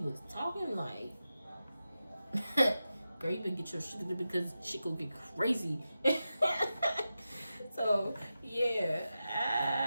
talking, like, girl, you better get your shit together because shit gonna get crazy. So yeah,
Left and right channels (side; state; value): both; inverted; correlation -0.91